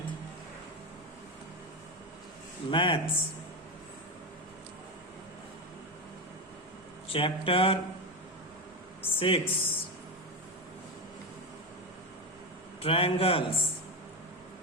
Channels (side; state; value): both; normal; correlation 0.15